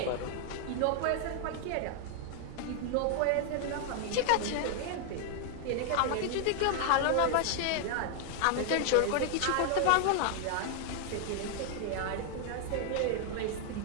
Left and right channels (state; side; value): different; both; correlation 0.00